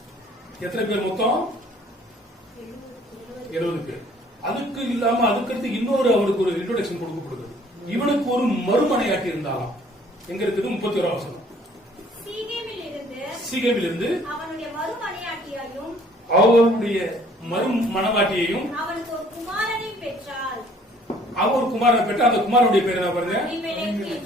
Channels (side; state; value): both; normal; correlation 0.57